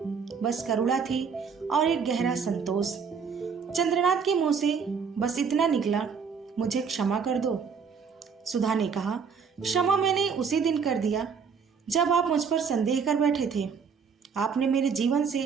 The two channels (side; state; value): left; quieter; 6.1 dB